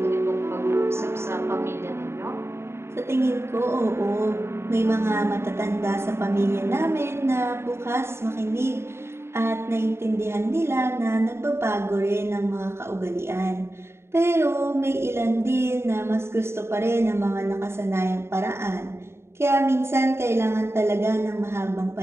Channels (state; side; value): late; left; 0.12 ms